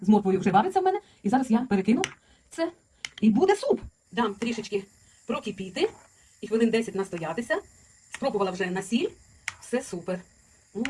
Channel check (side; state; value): both; identical; correlation 1.00